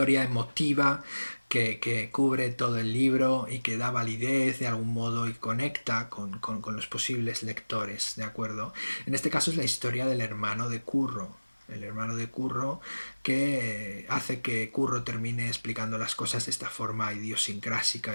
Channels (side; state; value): both; inverted; correlation -1.00